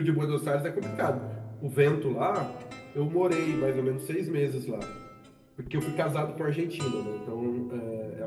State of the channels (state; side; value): identical; both; correlation 1.00